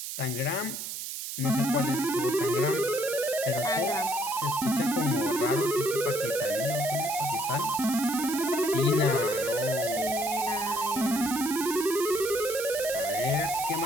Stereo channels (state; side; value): noise; right; hiss, 6 dB below the sound